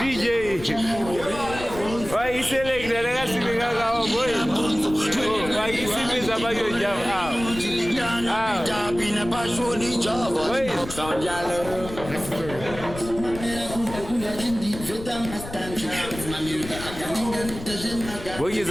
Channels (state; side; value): noise; left; rumble, 12 dB below the sound